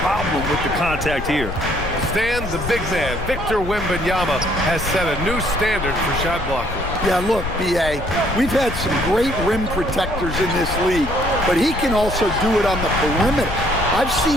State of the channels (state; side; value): noise; left; rumble, 8 dB below the sound